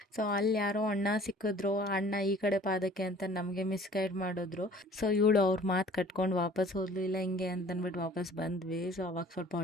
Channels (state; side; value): normal; both; correlation 0.50